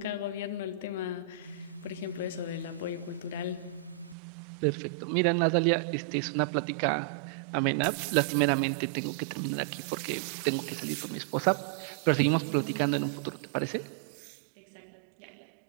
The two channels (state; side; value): drops out; left; at 4.2 s